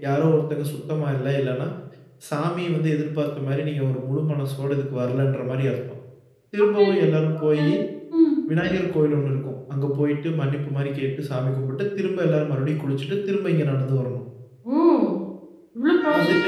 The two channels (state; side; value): identical; both; correlation 1.00